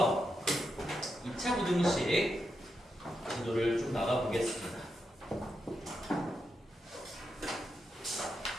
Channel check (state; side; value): normal; both; correlation 0.85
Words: 2차 부등식 지도를 좀 나가보겠습니다.